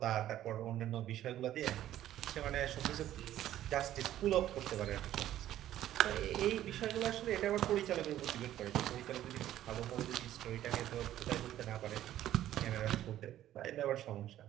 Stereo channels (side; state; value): left; quieter; 12.7 dB